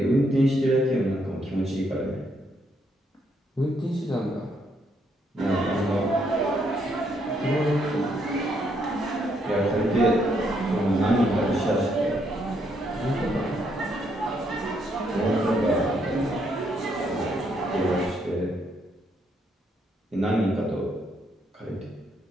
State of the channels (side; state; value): both; normal; correlation 0.74